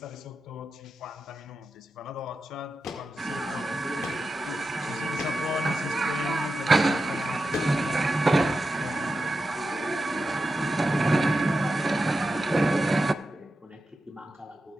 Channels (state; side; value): normal; both; correlation 0.90